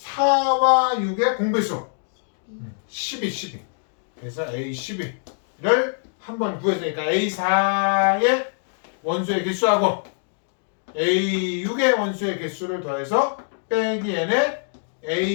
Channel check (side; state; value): right; silent; digital silence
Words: 6의 공배수. 12. 그래서 A12를 한번 구했으니까 A4의 원소의 개수하고 A6의 원소의 개수를 더해서 빼기 n의